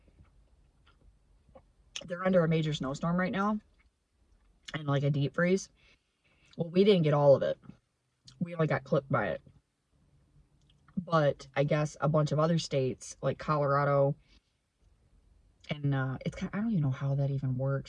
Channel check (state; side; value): identical; both; correlation 1.00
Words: they're under a major snowstorm right now, and like a deep freeze. Well, we didn't get all of it. We only got clipped by it. But I guess a bunch of other states, like Colorado, and it's kind of, I don't even know how that even